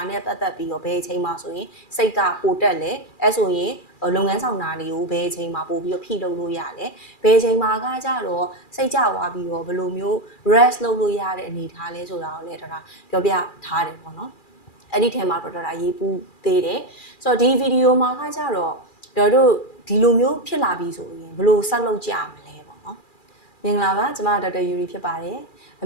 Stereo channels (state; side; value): late; right; 2.4 ms